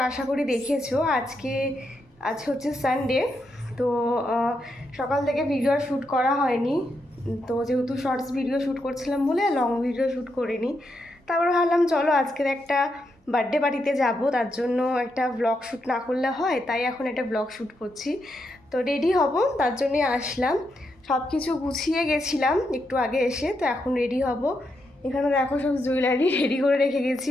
আশা করি দেখেছো। আজ হচ্ছে সানডে, তো সকাল থেকে ভিডিও শ্যুট করা হয়নি। তো যেহেতু শর্টস ভিডিও শ্যুট করছিলাম বলে লং ভিডিও শ্যুট করিনি। তারপর ভাবলাম চলো আজকের একটা বার্থডে পার্টিতে যাব, তার জন্য একটা ব্লগ শ্যুট না করলে হয়, তাই এখন একটা ব্লগ শ্যুট করছি। তো রেডি হব, তার জন্যই আসলাম। সব কিছু গুছিয়ে গেছিলাম একটু আগে এসে, তো এখন রেডি হব। এখানে দেখো সব জুয়েলারি রেডি করে রেখে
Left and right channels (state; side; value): normal; both; correlation 0.82